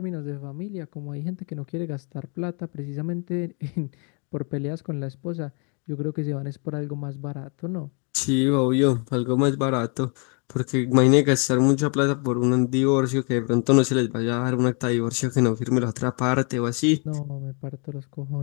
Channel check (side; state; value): right; quieter; 36.6 dB